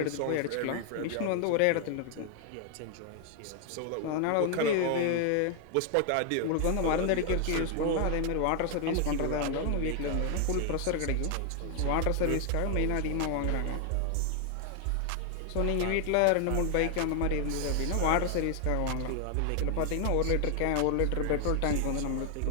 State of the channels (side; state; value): both; different; correlation 0.00